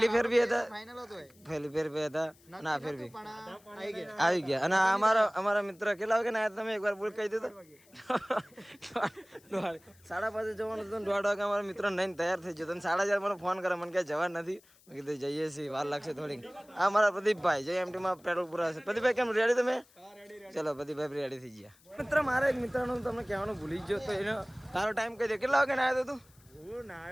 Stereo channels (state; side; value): noise; left; hiss, 29 dB below the sound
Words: ફેર બી હતા, પહેલી ફેર બી હતા, અને આ ફેર બી આવી ગયા. અને અમારા મિત્ર કેટલા વાગે ના તમે એકવાર બોલ કહી દીધું? 5:30 જવાનું હતું, 1:30 વાગે અમારા મિત્ર નહીં તૈયાર થઈ ગયો. 4:30 મને ફોન કરે, મને ક્યાંય જવા નથી. મેં કીધું જઈએ છીએ, વાર લાગશે થોડીક. આ મારા પ્રદીપભાઈ જે એમટીમાં પેટ્રોલ પુરાશે. પ્રદીપભાઈ કેમ રેડી તમે? ચલો પ્રદીપભાઈ રેડી થઈ ગયા. મિત્ર મારા એક મિત્રનું તમને કહેવાનું ભૂલી ગયો, તો એનો તારો ટાઈમ કહી દે, કેટલા વાગે ના આવ્યો તું? હું